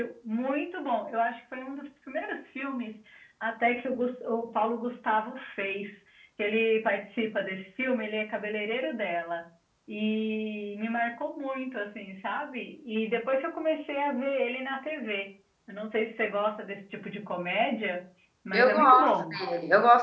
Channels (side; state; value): both; identical; correlation 1.00